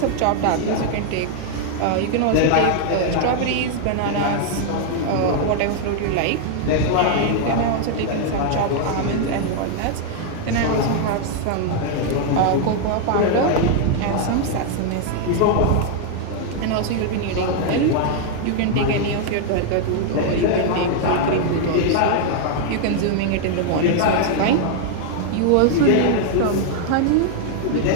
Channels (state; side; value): different; both; correlation 0.00